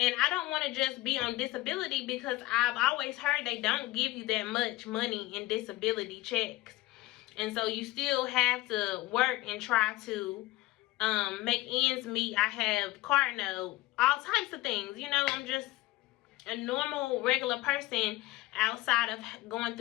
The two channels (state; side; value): quieter; right; 18.7 dB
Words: I don't want to just be on disability, because I've always heard they don't give you that much money in disability checks. And so you still have to work and try to make ends meet. I have car note, all types of things. You know, I'm just a normal, regular person outside of going